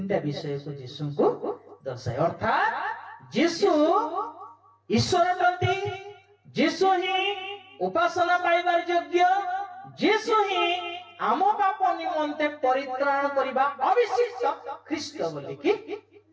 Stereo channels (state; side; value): identical; both; correlation 1.00